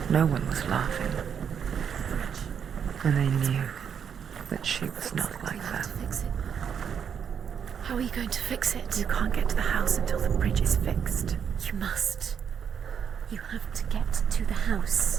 no one was laughing. And they knew that she was not like that. Fix it. How are you going to fix it? You can't get to the house until the bridge is fixed. You must. You have to get to the house.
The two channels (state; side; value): quieter; left; 7.6 dB